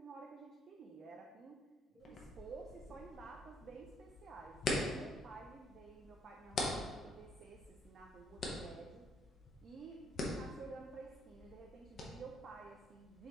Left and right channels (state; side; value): normal; both; correlation 0.69